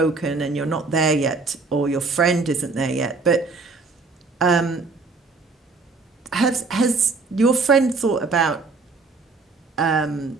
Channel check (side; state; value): left; quieter; 4.0 dB